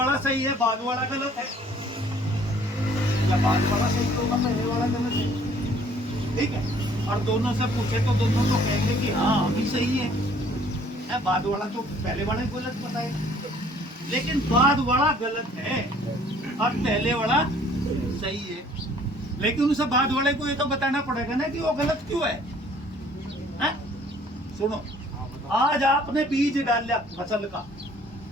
सही है बाद वाला गलत है, या बाद वाला सही होगा पहले वाला गलत है। ठीक है, और दोनों से पूछे तो दोनों तो कहेंगे कि हाँ अभी सही है, बाद वाला तो पहले वाला गलत बताएगा। लेकिन बाद वाला गलत है और पहले वाला सही है, लेकिन उसे बाद वाले को ये तो बताना पड़ेगा ना कि वो गलत क्यों है, हैं? सुनो, आज आपने बीज डाला फसल का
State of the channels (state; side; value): normal; both; correlation 0.57